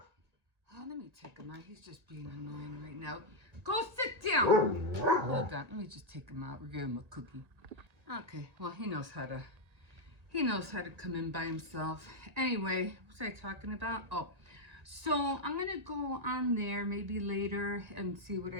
let me take him out. He's just being annoying right now. Go sit down. Hold on. Let me just take him out. We're giving him a cookie. Okay. Well, he knows how to come in by himself. Anyway, what was I talking about? Oh, so I'm going to go on there maybe later and see what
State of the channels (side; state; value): left; late; 1.9 ms